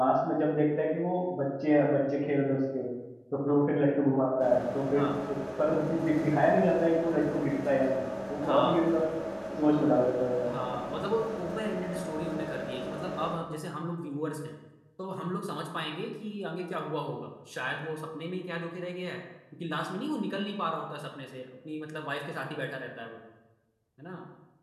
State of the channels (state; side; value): identical; both; correlation 1.00